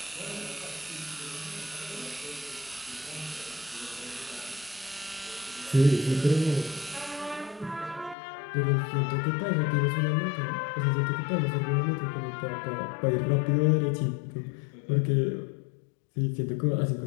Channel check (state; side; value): drops out; right; at 8.2 s